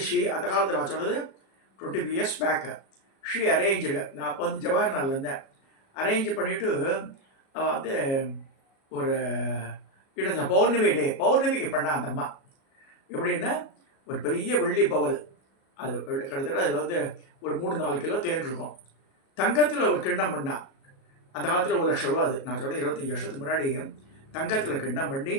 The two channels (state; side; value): late; right; 37 ms